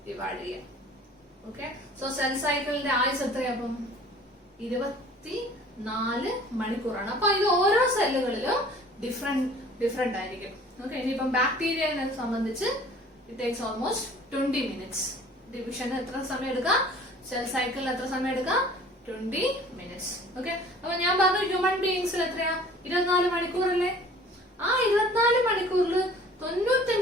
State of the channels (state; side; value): normal; both; correlation 0.49